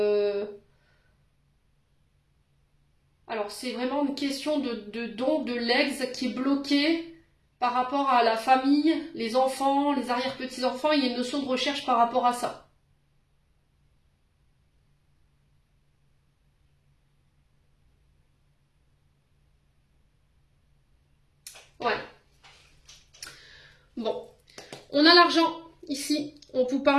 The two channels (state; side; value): identical; both; correlation 1.00